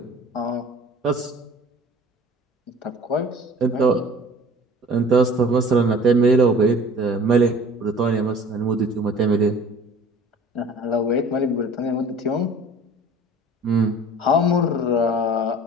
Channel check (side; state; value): both; normal; correlation 0.46